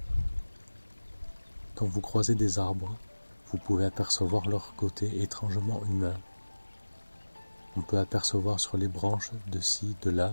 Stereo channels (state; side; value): inverted; both; correlation -1.00